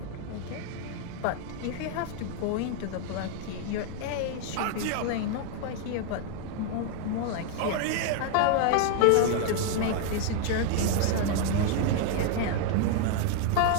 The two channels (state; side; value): different; both; correlation 0.00